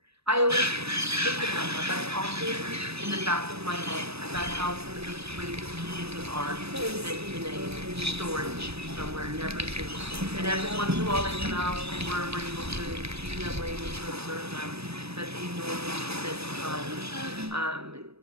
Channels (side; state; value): left; late; 0.78 ms